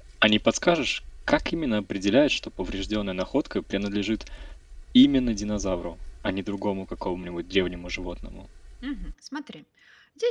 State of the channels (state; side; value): identical; both; correlation 1.00